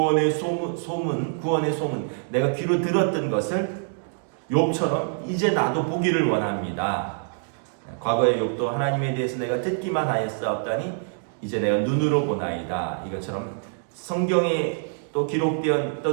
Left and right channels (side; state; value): left; silent; digital silence